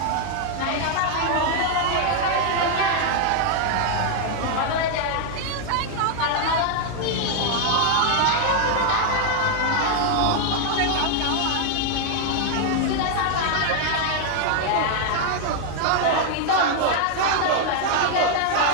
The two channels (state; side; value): different; both; correlation 0.00